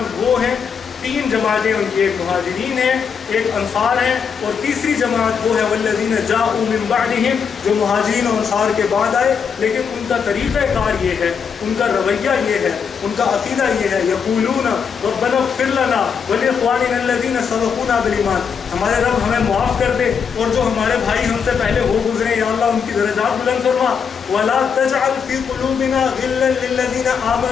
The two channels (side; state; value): right; quieter; 6.6 dB